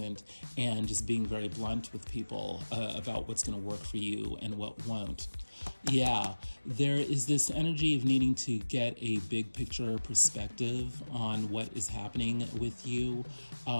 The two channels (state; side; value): inverted; both; correlation -1.00